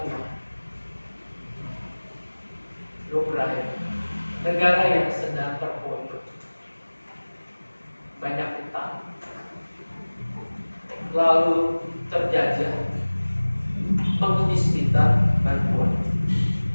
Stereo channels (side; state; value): both; inverted; correlation -1.00